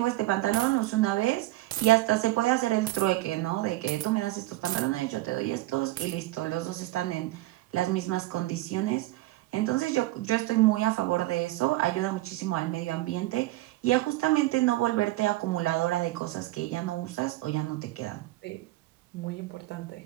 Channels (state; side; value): quieter; left; 17.7 dB